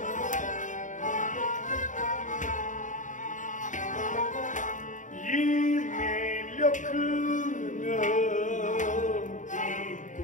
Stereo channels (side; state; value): right; late; 0.37 ms